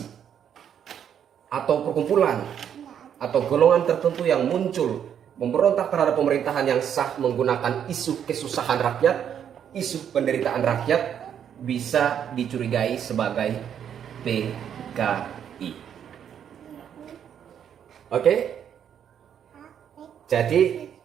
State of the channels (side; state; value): left; quieter; 8.9 dB